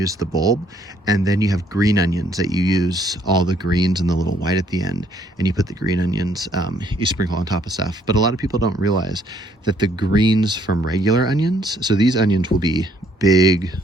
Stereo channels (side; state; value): both; normal; correlation 0.66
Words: the bulb, and then you have green onions that you use all the greens and the little white at the end, and you put the green onions, you sprinkle on top of stuff. But a lot of people don't realize that the greens from regular onions, so these onions will be big